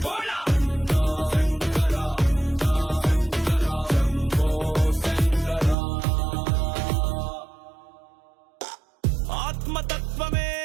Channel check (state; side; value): drops out; left; at 5.8 s